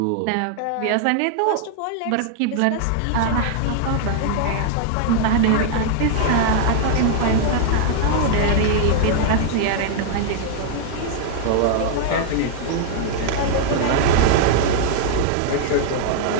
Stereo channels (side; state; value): both; different; correlation 0.00